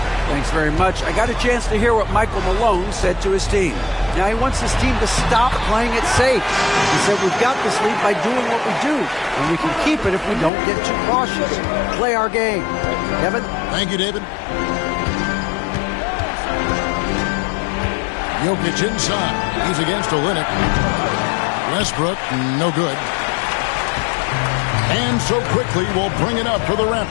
Thanks very much. I got a chance to hear what Michael Malone said to his team. Now he wants his team to stop playing it safe. He said we've got this lead by doing what we do, and we can keep it if we don't get too cautious. Play our game. Kevin? Thank you, David. Jokic inside. He's against Olynyk. Westbrook, no good. And so quickly we'll bring it up for the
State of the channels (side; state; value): right; drops out; at 10.5 s